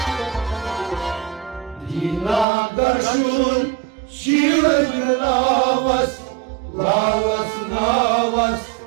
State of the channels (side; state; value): left; drops out; at 2.5 s